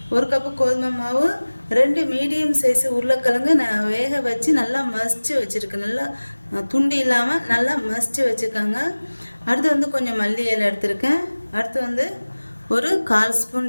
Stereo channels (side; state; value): both; inverted; correlation -1.00